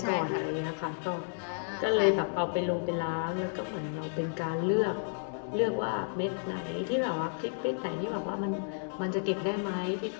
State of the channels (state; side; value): silent; right; digital silence